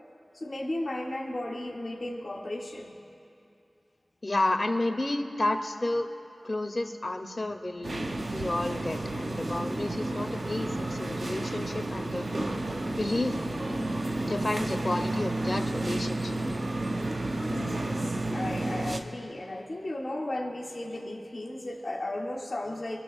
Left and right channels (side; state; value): both; normal; correlation 0.96